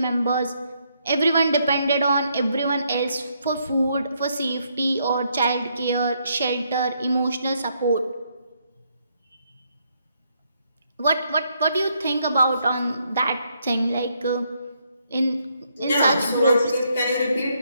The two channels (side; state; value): both; inverted; correlation -0.74